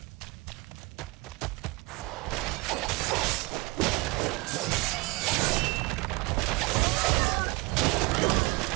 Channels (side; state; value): left; quieter; 25.4 dB